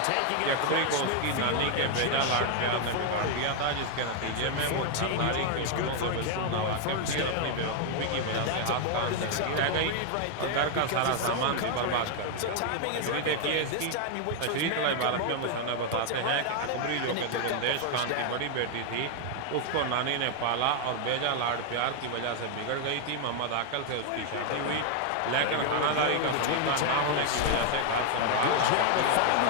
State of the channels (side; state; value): both; different; correlation 0.00